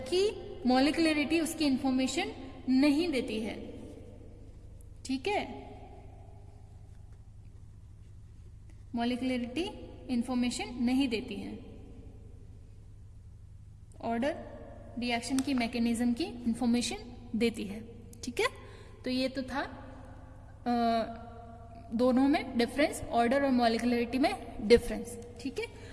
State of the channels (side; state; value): both; identical; correlation 1.00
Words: मॉलिक्यूलरिटी उसकी इंफॉर्मेशन नहीं देती है। ठीक है। मॉलिक्यूलरिटी इंफॉर्मेशन नहीं देती है, ऑर्डर रिएक्शन की मैकेनिज्म की इंफॉर्मेशन देती है। ठीक है। तो ये तो था दोनों में डिफरेंस, ऑर्डर और मॉलिक्यूलरिटी में डिफरेंस। ठीक है।